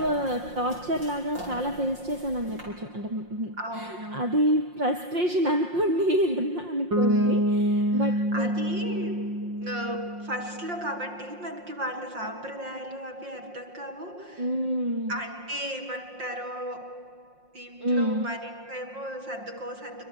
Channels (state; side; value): late; left; 5.6 ms